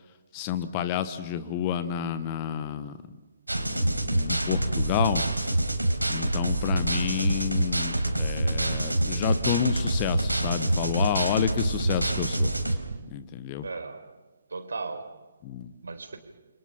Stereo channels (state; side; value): inverted; both; correlation -0.70